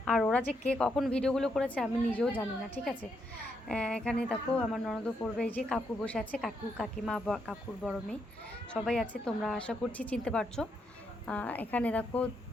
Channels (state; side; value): normal; both; correlation 0.78